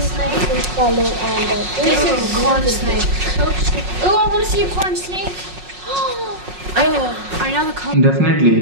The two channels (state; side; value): late; left; 5.5 ms